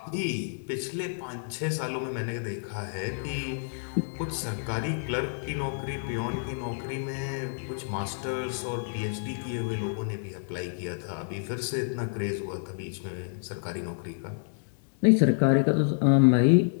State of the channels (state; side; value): silent; right; digital silence